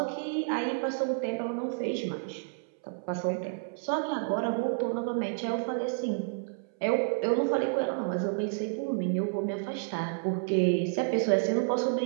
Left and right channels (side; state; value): left; silent; 58 dB below the other